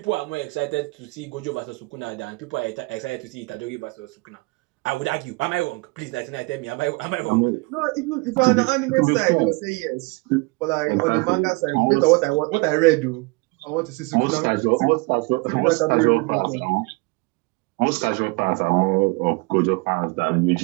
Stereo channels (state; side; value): quieter; left; 27.3 dB